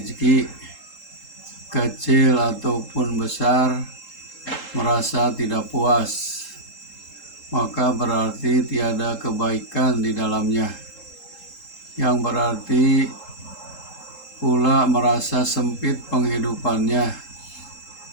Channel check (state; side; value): late; right; 3.8 ms